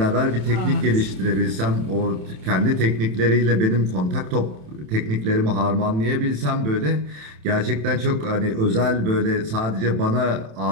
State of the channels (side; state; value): left; late; 27 ms